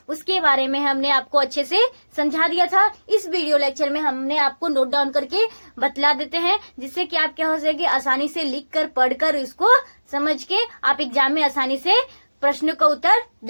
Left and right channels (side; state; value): both; inverted; correlation -1.00